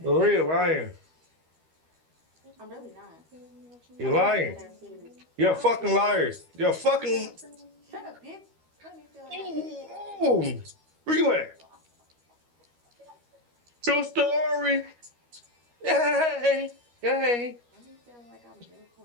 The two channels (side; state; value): left; late; 13 ms